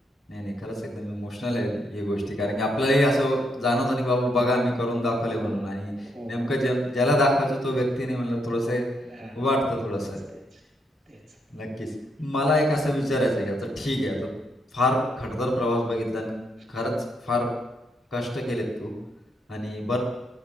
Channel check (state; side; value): normal; both; correlation 0.77